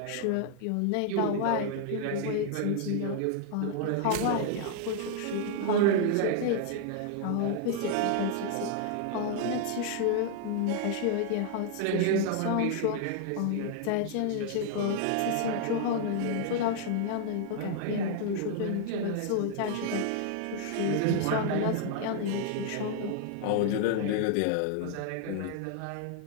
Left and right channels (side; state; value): both; different; correlation 0.00